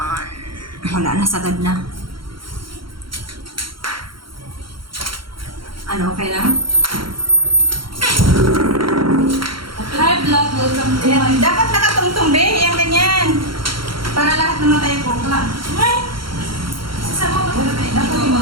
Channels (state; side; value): late; left; 0.73 ms